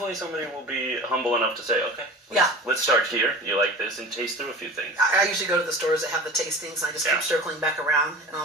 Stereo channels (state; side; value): normal; both; correlation 0.36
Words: somebody will be humble enough to say, okay, let's start here. You like this, and taste through a few things. I usually go to the stores that have the tastings, and I just keep circling back around. And